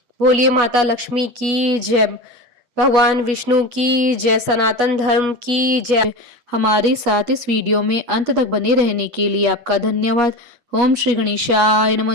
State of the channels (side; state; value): left; late; 8.2 ms